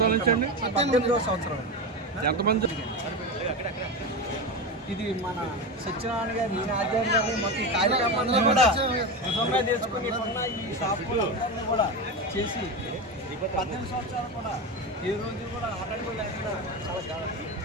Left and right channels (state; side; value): normal; both; correlation 0.19